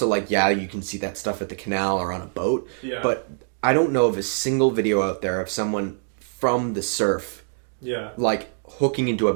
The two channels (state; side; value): silent; left; digital silence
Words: you can see that stuff at the canal or on a boat. Yeah. But I don't know of a single video out there of someone from the surf, hooking into a